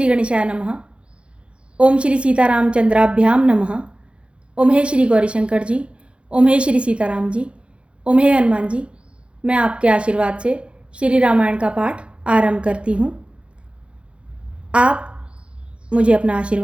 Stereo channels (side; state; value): left; late; 0.058 ms